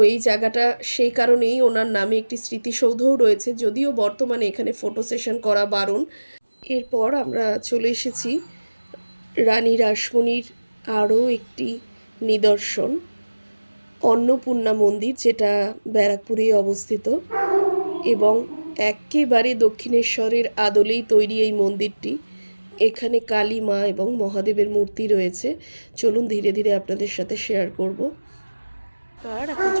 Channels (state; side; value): inverted; both; correlation -1.00